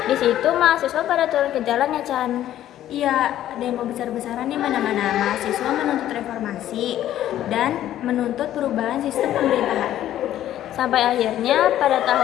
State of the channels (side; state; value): right; quieter; 12.4 dB